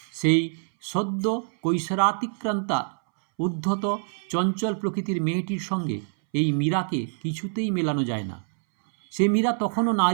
সেই সদ্য কৈশোরাতিক্রান্তা উদ্ধত চঞ্চল প্রকৃতির মেয়েটির সঙ্গে এই মীরাকে কিছুতেই মেলানো যায় না। সে মীরা তখনও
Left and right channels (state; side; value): silent; left; 61 dB below the other